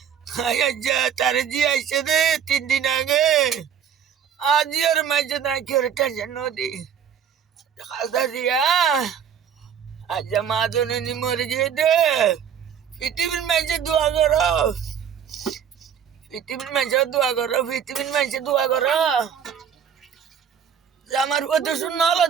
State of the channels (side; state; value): left; quieter; 8.1 dB